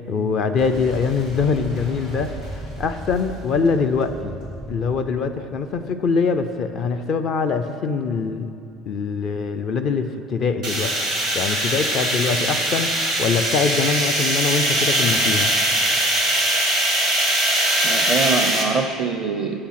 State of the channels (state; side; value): normal; both; correlation 0.49